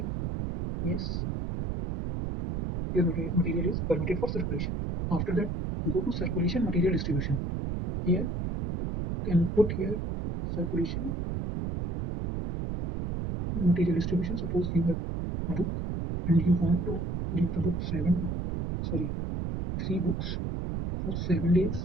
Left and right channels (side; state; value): right; noise; rumble, 3 dB below the sound